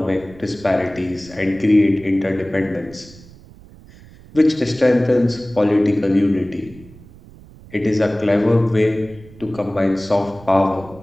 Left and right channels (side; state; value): right; noise; rumble, 21 dB below the sound